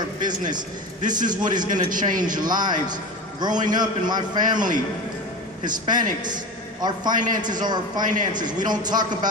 business, this is what is going to change lives. Growing up in my family, Hispanics, our finances are our finances. We don't talk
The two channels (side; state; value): both; normal; correlation 0.28